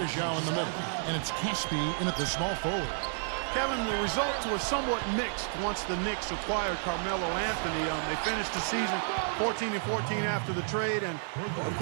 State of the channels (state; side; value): silent; left; 57 dB below the other